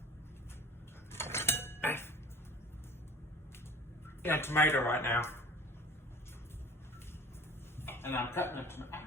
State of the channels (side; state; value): both; normal; correlation 0.46